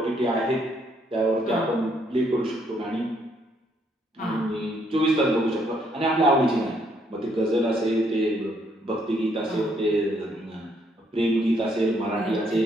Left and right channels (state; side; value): normal; both; correlation 0.70